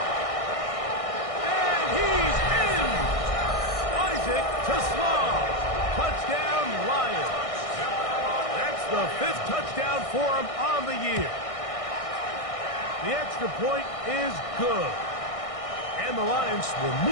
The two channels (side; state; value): right; late; 1.6 ms